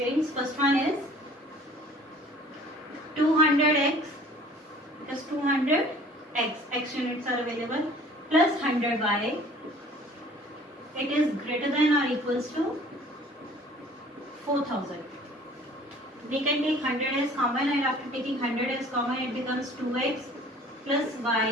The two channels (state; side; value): normal; both; correlation 0.50